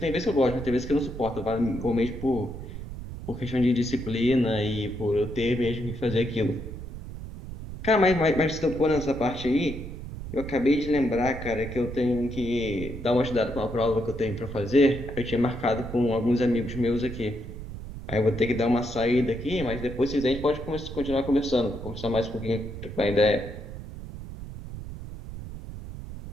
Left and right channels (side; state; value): right; noise; rumble, 10 dB below the sound